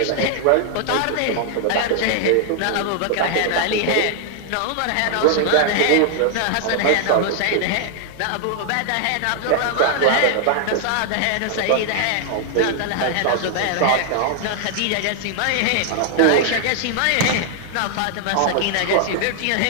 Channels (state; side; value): different; both; correlation 0.00